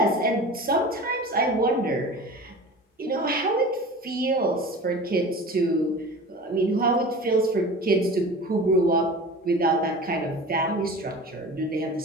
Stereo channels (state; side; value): normal; both; correlation 0.36